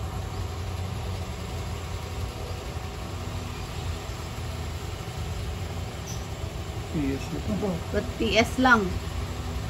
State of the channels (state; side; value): identical; both; correlation 1.00